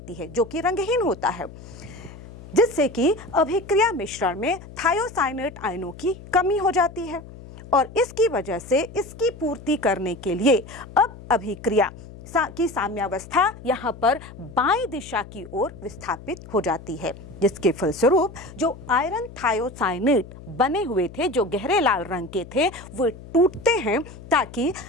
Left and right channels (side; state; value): left; noise; hum, 16 dB below the sound